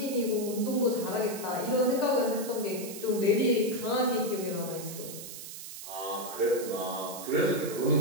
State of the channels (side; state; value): right; noise; hiss, 11 dB below the sound